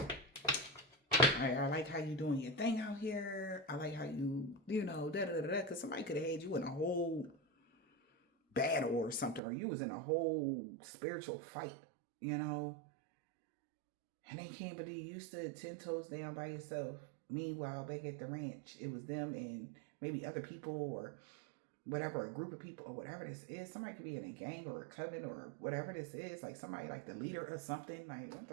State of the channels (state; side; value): drops out; left; at 9.4 s